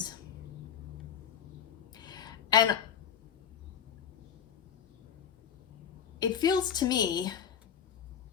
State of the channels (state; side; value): quieter; right; 8.2 dB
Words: And it feels to me